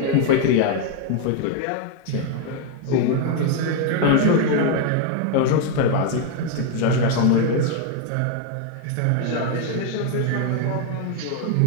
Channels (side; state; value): both; different; correlation 0.00